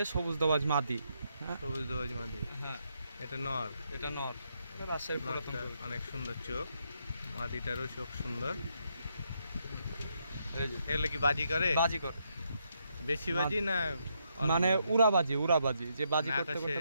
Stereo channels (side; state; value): both; inverted; correlation -0.78